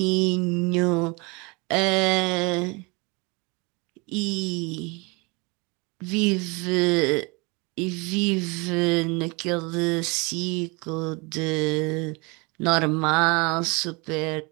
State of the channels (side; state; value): left; quieter; 28.2 dB